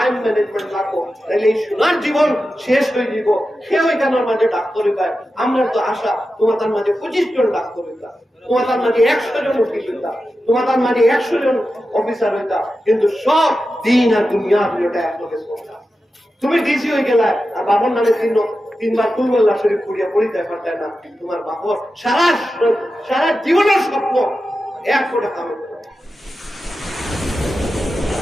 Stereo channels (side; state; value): both; normal; correlation 0.91